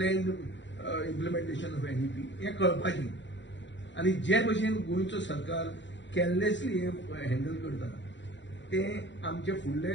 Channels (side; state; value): right; late; 0.53 ms